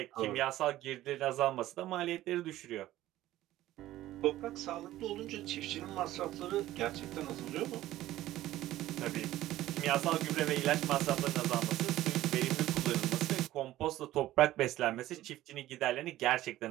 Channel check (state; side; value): quieter; left; 14.9 dB